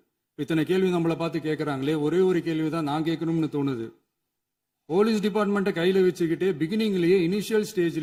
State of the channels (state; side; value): identical; both; correlation 1.00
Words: இத்தனை கேள்வி நம்மளை பார்த்து கேட்குறாங்களே, ஒரே ஒரு கேள்வி தான் நான் கேட்கணும்னு தோணுது. போலீஸ் டிபார்ட்மெண்ட்டை கையில் வச்சுக்கிட்டே பிகினிங்லேயே இனிஷியல்